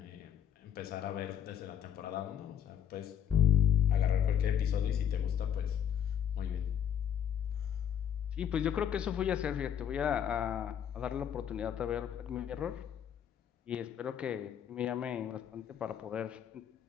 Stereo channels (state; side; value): quieter; right; 9.3 dB